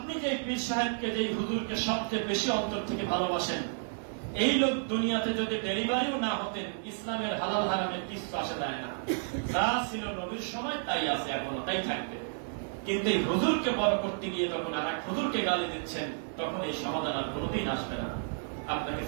যে পীর সাহেবকে, যে হুজুরকে সবচেয়ে বেশি অন্তর থেকে ভালোবাসেন, এই লোক দুনিয়াতে যদি ডেলিভারিও না হতেন, ইসলামের হালাল হারামের কিছু আসে যায় না। যা ছিল নবীর সময় তাই আছে, এখনো তাই থাকবে। কিন্তু এই হুজুরকে বড় করতে গিয়ে যখন আর এক হুজুরকে গালি দিচ্ছেন, তখন এই সমাধান আর কোনোদিন আসবে না। আপনাকে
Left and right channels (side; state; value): left; silent; digital silence